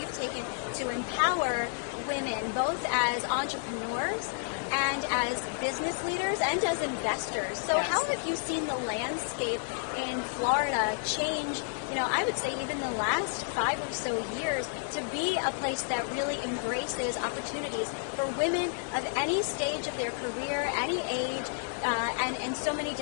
taken to empower women, both as entrepreneurs and as business leaders and as investors. So how have you seen the landscape in Florida change, I would say even the last 5 or so years, to be a place that really embraces opportunities for women of any stage of their career, any age, and so many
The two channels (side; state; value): right; silent; digital silence